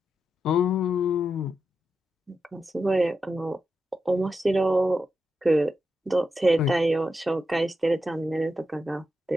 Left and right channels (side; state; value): both; normal; correlation 0.87